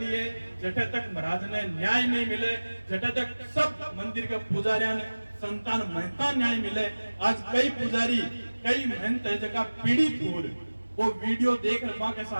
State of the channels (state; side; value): inverted; both; correlation -1.00